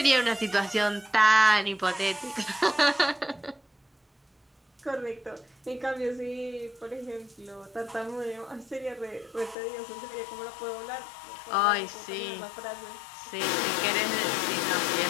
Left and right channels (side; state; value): right; drops out; at 9.6 s